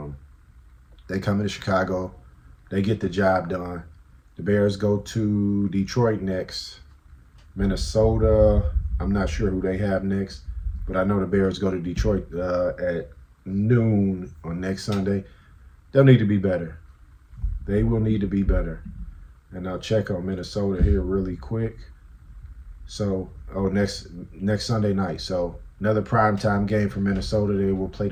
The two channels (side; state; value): both; identical; correlation 1.00